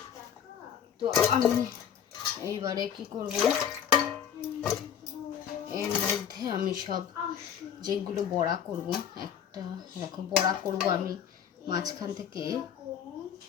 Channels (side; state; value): right; quieter; 8.7 dB